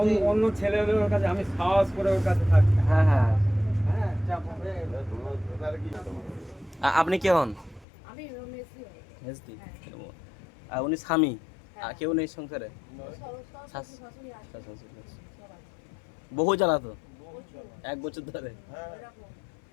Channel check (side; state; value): right; drops out; at 7.9 s